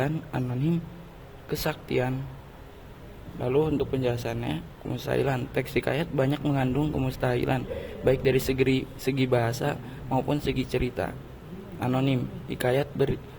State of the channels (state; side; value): identical; both; correlation 1.00